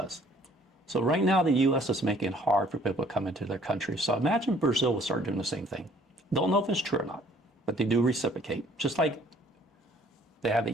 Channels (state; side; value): normal; both; correlation 0.58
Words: So right now, the U.S. is making it hard for people to come into their country. So imagine Brazil will start doing the same thing. Don't know if it's true or not, but they do reciprocate. Just like they have